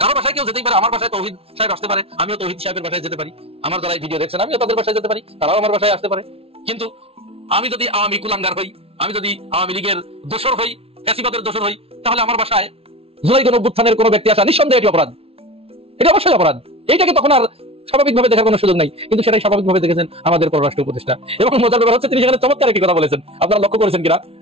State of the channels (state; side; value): late; left; 0.28 ms